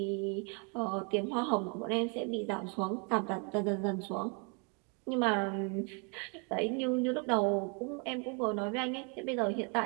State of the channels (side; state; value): left; quieter; 35.7 dB